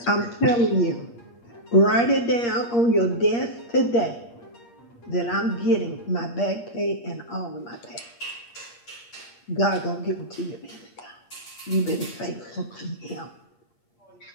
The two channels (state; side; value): late; right; 8.5 ms